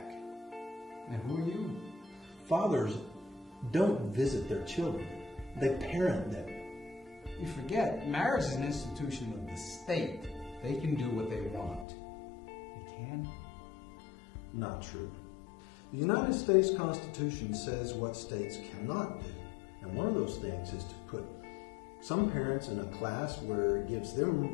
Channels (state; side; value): drops out; right; at 11.9 s